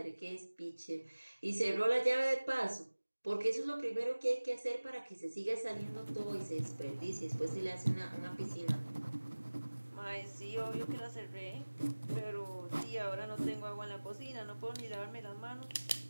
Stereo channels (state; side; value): inverted; both; correlation -1.00